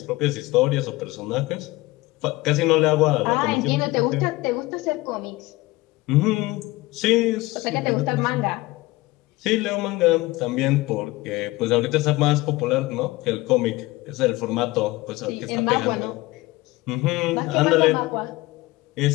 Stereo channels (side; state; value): right; quieter; 20.2 dB